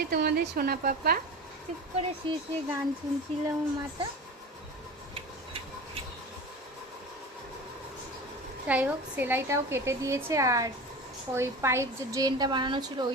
তোমাদের সোনা পাপা চুপ করে শুয়ে শুয়ে গান শুনছিল আমার মাটা। যাই হোক, সেলাইটাও কেটে দিয়েছে আর ওই পাইপ যে ড্রেনটা বানানো ছিল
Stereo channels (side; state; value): both; normal; correlation 0.32